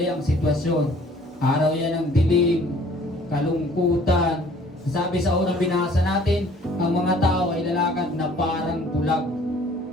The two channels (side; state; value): both; normal; correlation 0.55